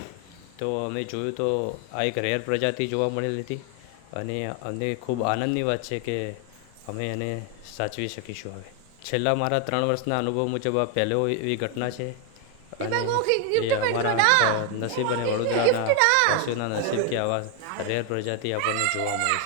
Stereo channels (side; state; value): both; different; correlation 0.01